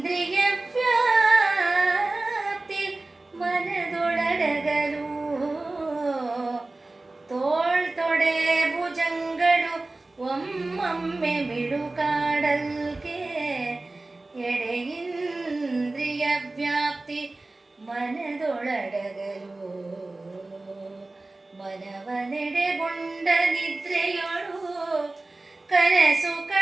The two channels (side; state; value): left; quieter; 3.0 dB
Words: ವ್ಯಾಪ್ತಿ ಮನದೊಳಡಗಲು ತೋಳ್ ತೊಡೆ ಭುಜಂಗಳು ಒಮ್ಮೊಮ್ಮೆ ಮಿಡುಕಾಡಲ್ಕೆ ಎಡೆ ಇಂದ್ರಿಯ ವ್ಯಾಪ್ತಿ ಮನದೊಳಡಗಲು ಮನವನೆಡೆಗೊಂಡ ನಿದ್ರೆಯೊಳು ಕನಸು